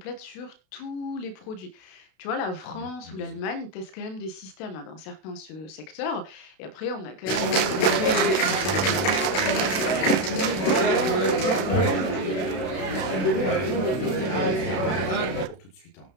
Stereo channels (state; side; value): late; right; 32 ms